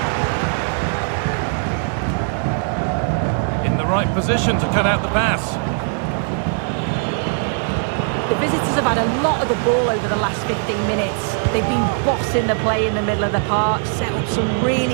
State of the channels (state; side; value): silent; left; 56 dB below the other